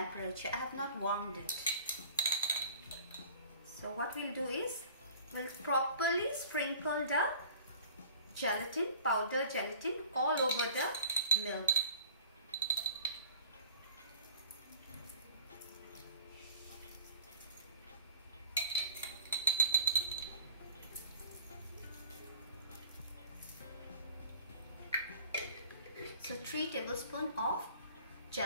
I have not warmed it. So what we'll do is we'll properly sprinkle the gelatin, powder gelatin, all over the milk. So 3 tablespoons of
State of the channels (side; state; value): both; inverted; correlation -0.47